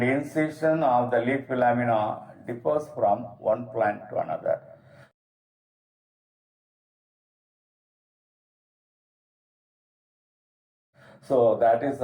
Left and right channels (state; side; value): identical; both; correlation 1.00